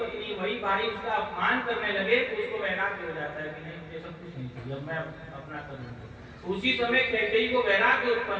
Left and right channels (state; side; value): identical; both; correlation 1.00